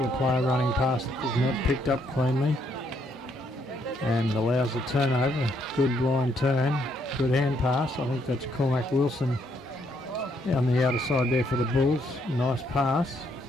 the player running past. It is not picked up cleanly. And allows a turnover. Good blind turn. Good hand pass. I think that's Cormac Wilson on the outer side there for the Bulls. Nice pass.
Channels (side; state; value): both; normal; correlation 0.72